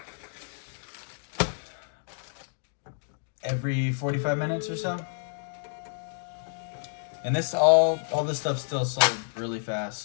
every 45 minutes or so. And all this stuff still sold really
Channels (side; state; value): right; silent; digital silence